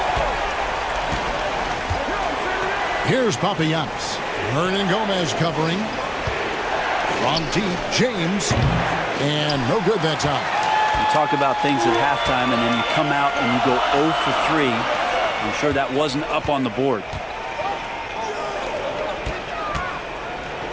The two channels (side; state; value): both; identical; correlation 1.00